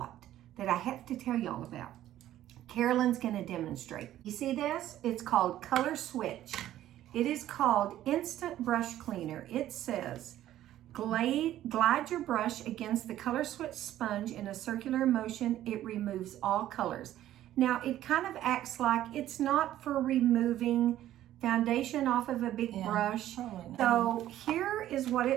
that I have to tell y'all about, Carolyn's gonna demonstrate. You see this? It's called Color Switch. It is called Instant Brush Cleaner. It says, glide your brush against the Color Switch sponge in a circular motion. It removes all colors. Now, it kind of acts like it's not for removing foundation off of a big brush. So here is what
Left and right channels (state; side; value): quieter; left; 13.0 dB